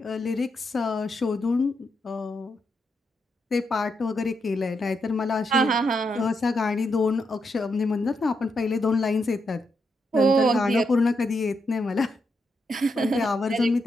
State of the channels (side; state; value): both; normal; correlation 0.82